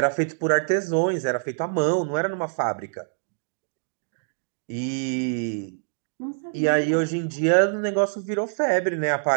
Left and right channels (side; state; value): left; silent; digital silence